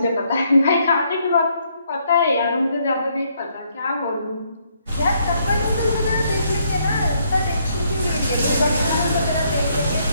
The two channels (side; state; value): both; inverted; correlation -0.71